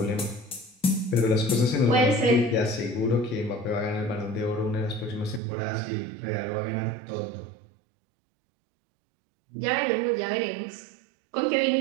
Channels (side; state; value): left; drops out; at 5.4 s